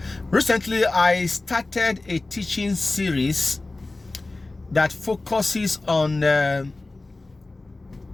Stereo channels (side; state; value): right; quieter; 3.1 dB